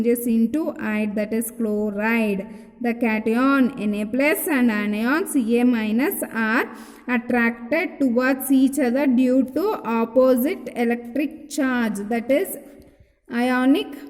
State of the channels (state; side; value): identical; both; correlation 1.00